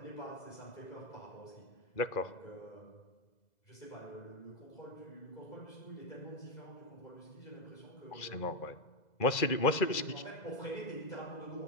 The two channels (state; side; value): late; right; 2.0 ms